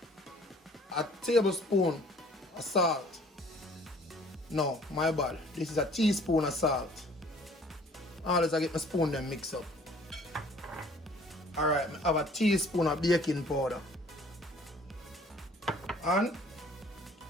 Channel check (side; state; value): both; normal; correlation 0.54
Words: a tablespoon of salt. No, my bad. This is a teaspoon of salt. Always I get my spoon then mix up. Alright, I have a teaspoon of baking powder. And